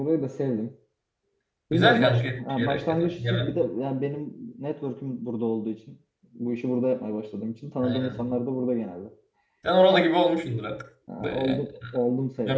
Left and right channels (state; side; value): identical; both; correlation 1.00